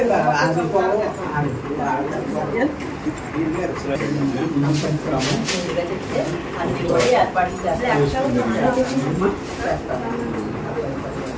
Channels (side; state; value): both; identical; correlation 1.00